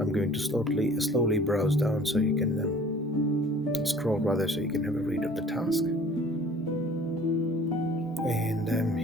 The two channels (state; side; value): normal; both; correlation 0.50